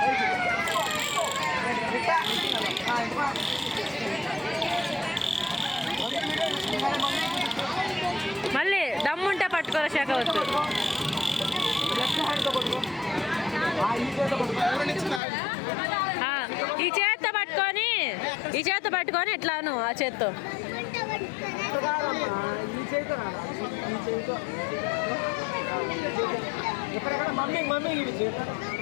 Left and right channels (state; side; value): drops out; right; at 15.2 s